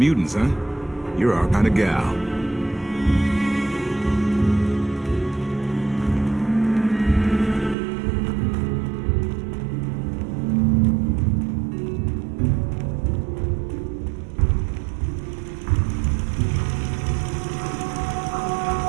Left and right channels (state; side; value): drops out; left; at 7.8 s